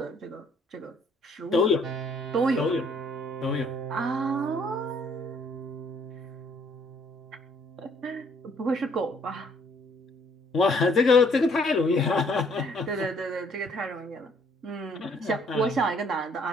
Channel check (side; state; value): both; normal; correlation 0.63